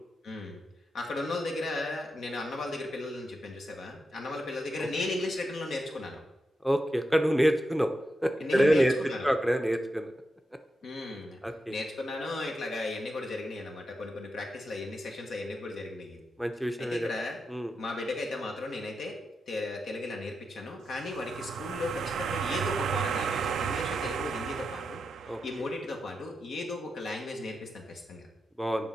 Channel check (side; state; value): both; normal; correlation 0.87